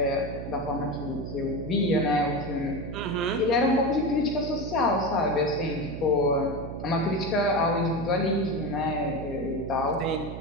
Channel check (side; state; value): right; noise; hum, 8 dB below the sound